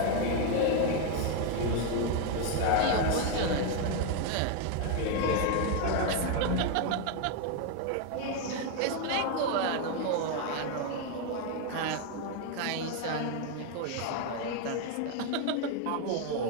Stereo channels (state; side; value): different; both; correlation 0.01